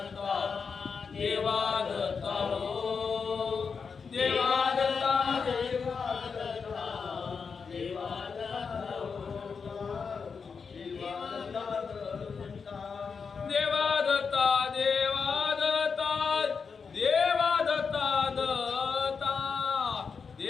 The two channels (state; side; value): quieter; right; 5.5 dB